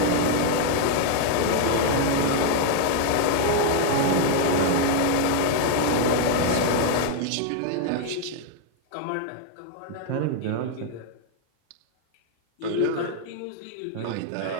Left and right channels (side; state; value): both; different; correlation 0.00